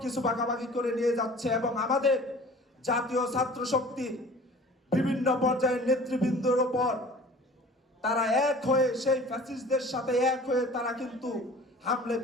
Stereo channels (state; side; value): normal; both; correlation 0.45